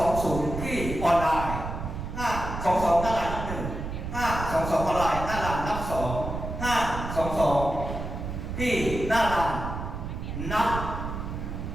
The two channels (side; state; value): right; noise; rumble, 6 dB below the sound